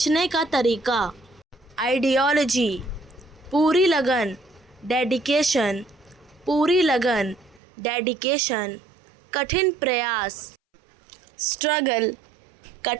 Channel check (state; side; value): drops out; left; at 7.6 s